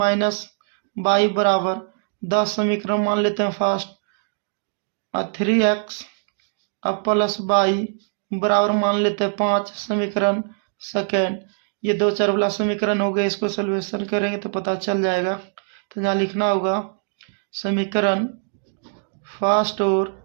by बराबर 10, समीकरण मान लेते हैं फर्स्ट, और 3x अब प्लस बाई बराबर मान लेते हैं 5, समीकरण सेकेंड। ये 2 4 वाला समीकरण हो गया, इसको सॉल्यूशन करेंगे तो पता चल जाएगा। तो यहाँ लिखना होगा समीकरण फर्स्ट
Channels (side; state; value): left; silent; digital silence